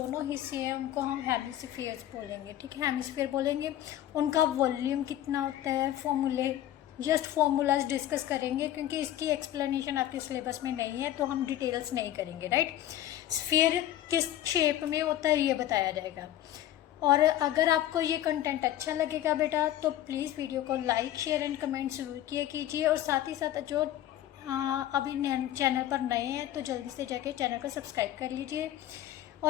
हिस्से हैं उनको हम हेमिस्फीयर्स बोलेंगे, ठीक है, हेमिस्फीयर बोलेंगे। उनका वॉल्यूम कितना होता है, फॉर्मूलाज डिस्कस करेंगे, क्योंकि इसकी एक्सप्लेनेशन आपके सिलेबस में नहीं है तो हम डिटेल्स नहीं करेंगे, राइट। स्फीयर किस शेप में होता है ये बताया जाएगा। और अगर आपको ये कंटेंट अच्छा लगेगा बेटा तो प्लीज़ वीडियो को लाइक शेयर एंड कमेंट ज़रूर किया कीजिए। और साथ ही साथ जो अभी चैनल पर नए हैं तो जल्दी से जाके चैनल को सब्सक्राइब कर लीजिए,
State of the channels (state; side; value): quieter; right; 12.8 dB